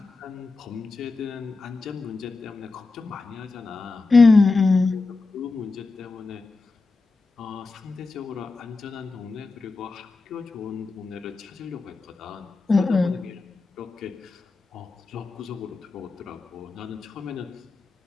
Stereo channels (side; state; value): right; quieter; 3.8 dB